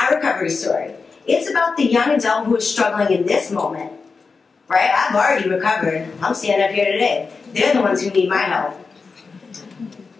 recovery story. It's about the young adult who is struggling in this moment. Right? I've already recovered. I'm standing up here today. They're the ones who need my help.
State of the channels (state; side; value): quieter; right; 4.6 dB